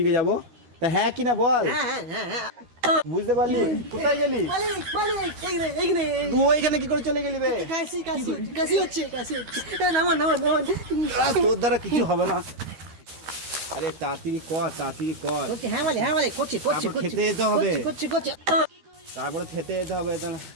যাবো। তা হ্যাঁ কি না বল। হ্যাঁ বুঝতে পারলি? কোথায় গেলি তুই? ওইখানে কি করে চলে গেলি বে? কাশি হচ্ছে নামান। তোর দ্বারা কিছু হবে না। আরে তাড়াতাড়ি কর। হ্যাঁ মালিক করছি। খেতে যেতে হবে। করছি। তারপরে খেতে যেতে হবে।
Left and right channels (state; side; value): late; left; 13 ms